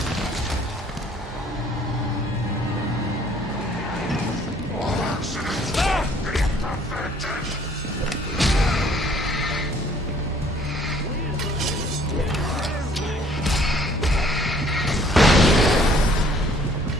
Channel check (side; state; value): both; normal; correlation 0.59